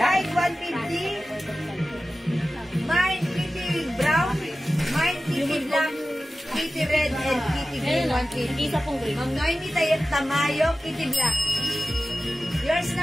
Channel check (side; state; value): both; normal; correlation 0.95